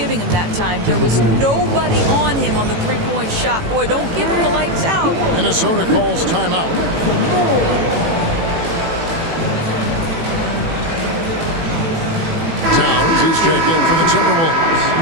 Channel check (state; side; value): late; left; 18 ms